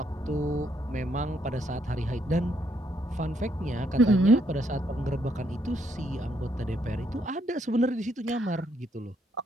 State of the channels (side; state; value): both; normal; correlation 0.74